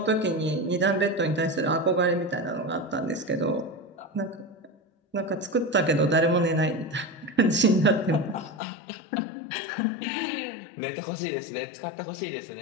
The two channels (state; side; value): drops out; right; at 8.6 s